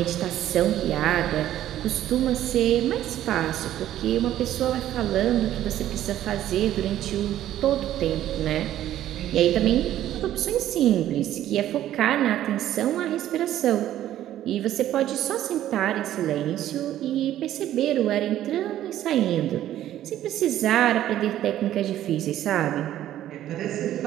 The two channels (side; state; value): left; quieter; 12.5 dB